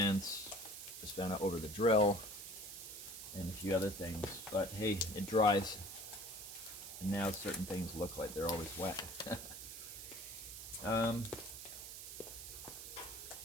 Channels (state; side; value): noise; right; hiss, 9 dB below the sound